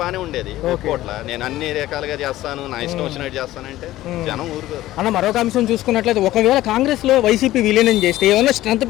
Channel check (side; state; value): right; quieter; 15.4 dB